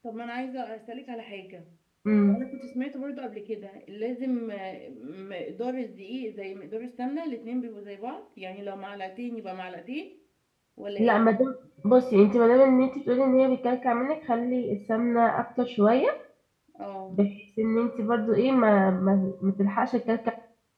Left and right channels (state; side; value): identical; both; correlation 1.00